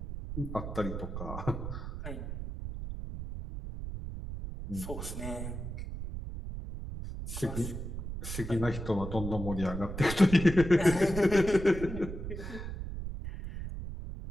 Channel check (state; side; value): noise; right; rumble, 7 dB below the sound